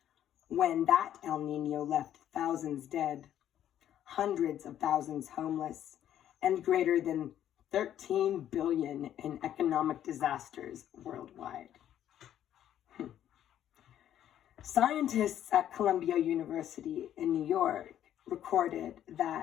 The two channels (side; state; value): right; quieter; 11.0 dB